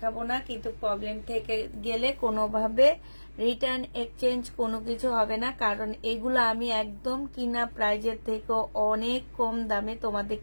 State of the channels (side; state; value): both; inverted; correlation -1.00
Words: না, কিন্তু প্রবলেম থেকে গেলে কোনোভাবে রিটার্ন এক্সচেঞ্জ কোনো কিছু হবে না, কারণ এগুলো আমি একদম কিনা প্রাইজের থেকে অনেক কম দামে